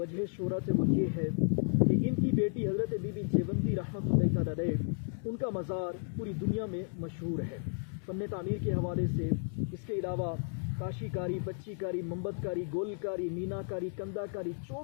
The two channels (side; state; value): right; silent; 56 dB below the other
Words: शोहरत है वो ये है कि इनकी बेटी हज़रत बीबी जेवंदी रहमतुल्लाह तआला अलैह, उनका मज़ार पूरी दुनिया में मशहूर है फ़न तामीर के हवाले से। इसके अलावा काशीकारी, पच्चीकारी, मोमबतकारी, गोलकारी, मीनाकारी, कंदाकारी,